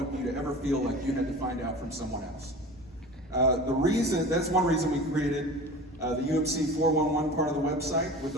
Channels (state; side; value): normal; both; correlation 0.36